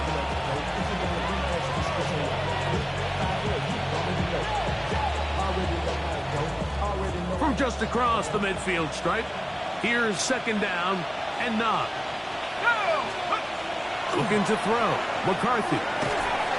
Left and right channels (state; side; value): identical; both; correlation 1.00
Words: From just across the midfield stripe, here's second down and 9. Looking to throw. McCarthy.